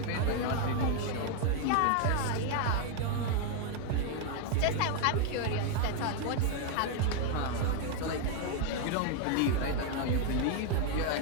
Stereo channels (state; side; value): different; both; correlation 0.00